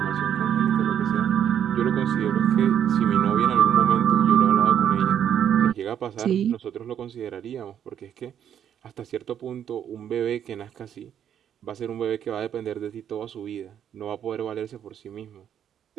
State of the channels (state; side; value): quieter; left; 9.4 dB